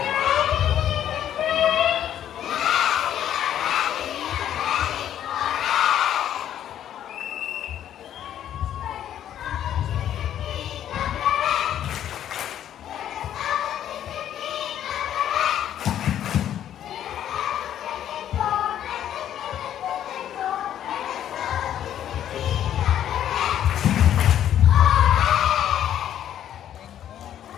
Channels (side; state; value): right; quieter; 10.7 dB